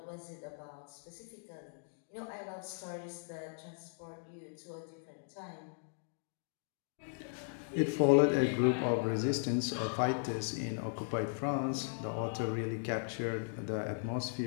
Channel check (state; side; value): silent; right; digital silence